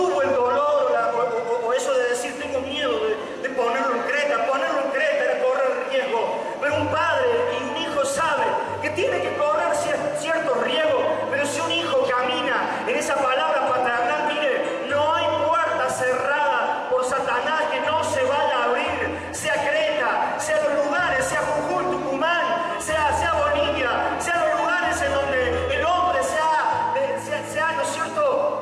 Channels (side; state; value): both; identical; correlation 1.00